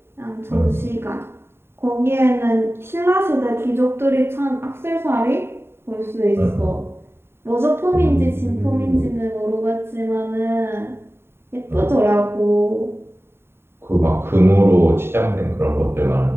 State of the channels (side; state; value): left; late; 0.11 ms